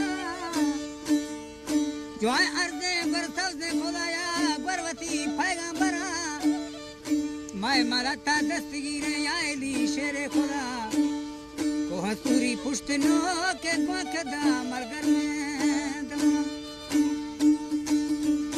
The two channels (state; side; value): identical; both; correlation 1.00